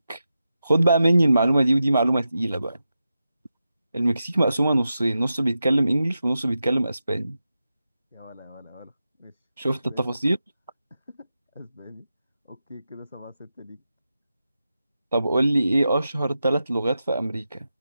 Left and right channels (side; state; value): both; inverted; correlation -0.90